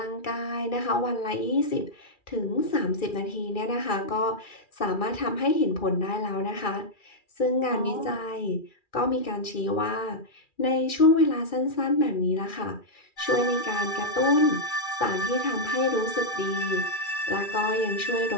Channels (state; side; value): late; right; 2.4 ms